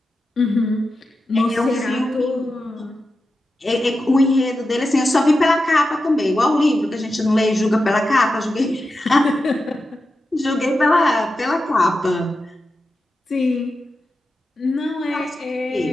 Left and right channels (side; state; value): both; normal; correlation 0.91